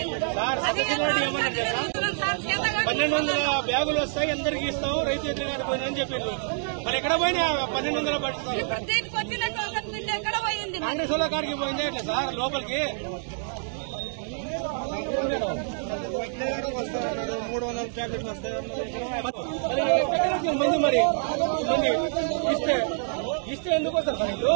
1200 బ్యాగులు వస్తాయి, అందరికి ఇస్తాం, రైతు ఎదురుగానే పోయిందని చెప్పిండ్రు. మరి ఎక్కడ పోయినా 1200 పడుతుంది. ఎక్కడ పోయింది? కాంగ్రెస్ వాళ్ళ కాడికి పోయిందే ఇట్లా సార్ లోపలికి 300 ప్యాకెట్లు వస్తాయి. మంది మరి మంది ఇస్తే ఎందుకు వస్తారు సార్ వీళ్ళు?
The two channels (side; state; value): left; silent; 58 dB below the other